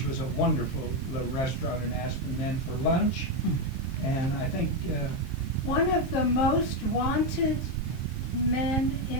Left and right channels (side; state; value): right; late; 23 ms